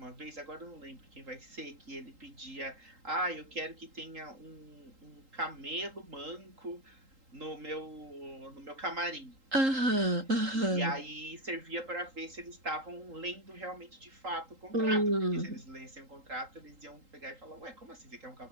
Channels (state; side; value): late; left; 3.8 ms